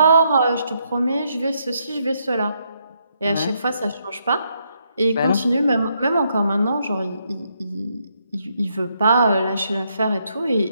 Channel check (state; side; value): inverted; both; correlation -0.76